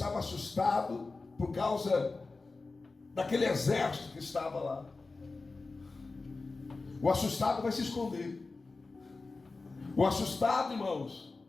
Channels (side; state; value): right; quieter; 3.7 dB